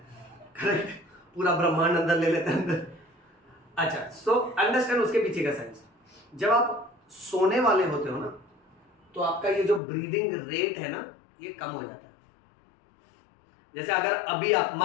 करेक्ट, पूरा ब्रह्मांड अंदर ले लेते हैं अंदर। अच्छा, सो अंडरस्टैंड उसके पीछे का साइंस। जब आप सोने वाले होते हो ना तो आपका ये जो ब्रीदिंग रेट है ना ये कम हो जाता है। जैसे अगर अभी आप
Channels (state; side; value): drops out; right; at 9.8 s